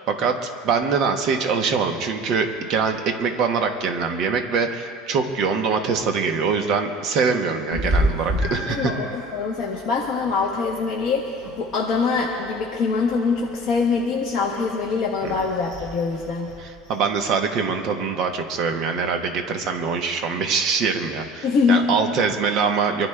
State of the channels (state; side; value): normal; both; correlation 0.41